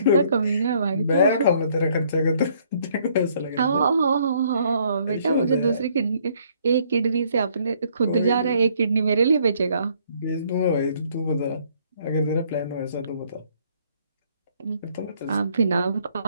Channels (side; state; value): both; inverted; correlation -0.65